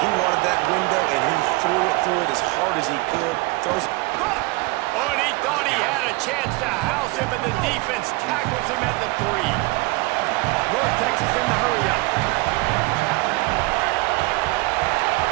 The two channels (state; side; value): quieter; left; 23.8 dB